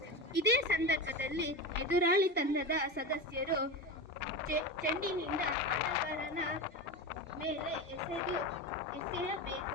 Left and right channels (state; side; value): normal; both; correlation 0.22